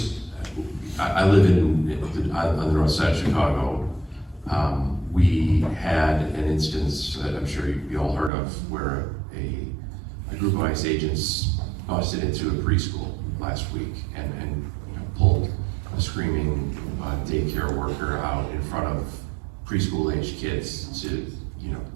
live on the north side of Chicago. We had an instance that I'm sure you all heard of, where a group of ICE agents busted into a preschool last week and pulled a screaming daycare worker out in front of preschool-aged kids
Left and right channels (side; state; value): left; drops out; at 8.3 s